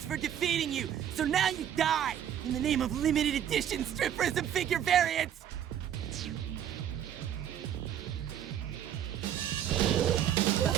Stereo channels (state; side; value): quieter; left; 10.0 dB